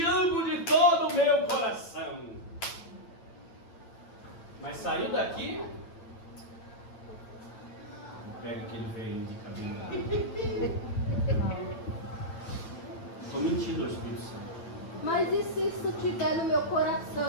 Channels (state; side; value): late; right; 8.9 ms